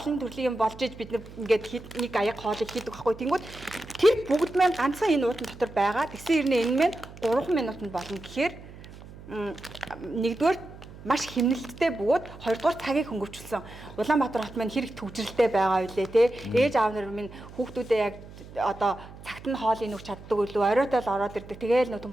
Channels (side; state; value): right; noise; hum, 17 dB below the sound